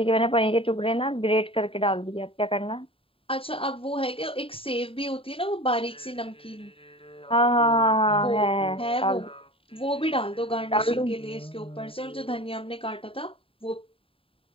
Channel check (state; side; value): late; right; 0.27 ms